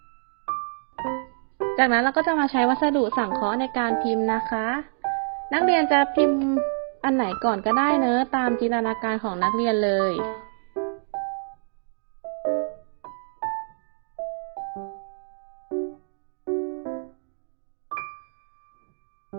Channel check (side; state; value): left; silent; 60 dB below the other